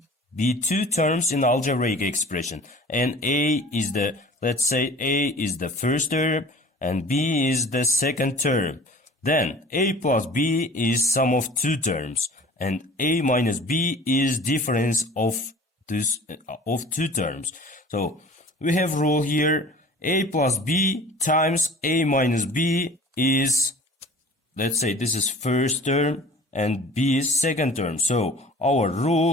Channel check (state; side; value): normal; both; correlation 0.44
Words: be two terms in algebraic expression, and let's say A is the first term and B is the second term. Then A plus B is sum of two terms and A minus B is difference of two terms. So we have rule here: A plus B times A minus B is, let's say this is first term and B is second term. So our